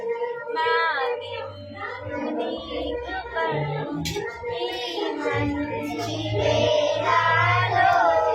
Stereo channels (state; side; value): identical; both; correlation 1.00